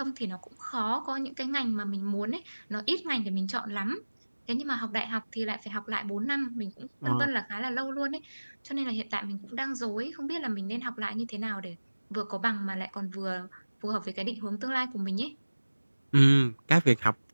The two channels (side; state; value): both; inverted; correlation -1.00